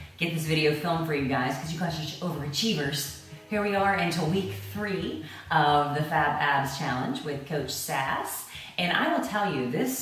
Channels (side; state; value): both; identical; correlation 1.00